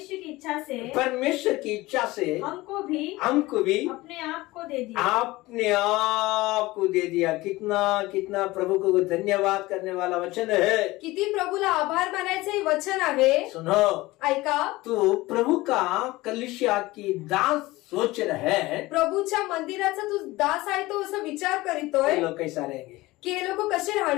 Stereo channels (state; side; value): quieter; right; 19.6 dB